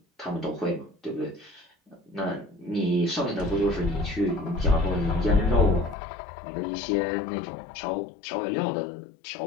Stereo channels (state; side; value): drops out; right; at 6.0 s